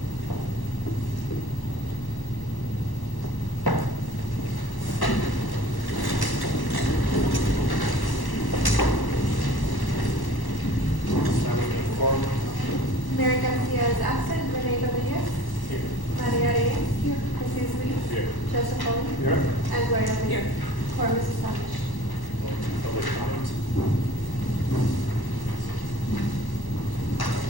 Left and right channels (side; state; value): right; late; 1.1 ms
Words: Mary Garcia is absent. Renee Rodriguez. Here. Maria Reyes. Here. Jesus Luis. Here. Joseph Pauling. Here. And Gloria Here. Quorum is established. Public comments?